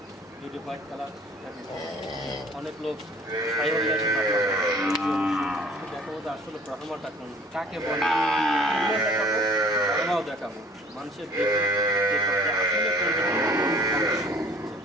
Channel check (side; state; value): both; normal; correlation 0.52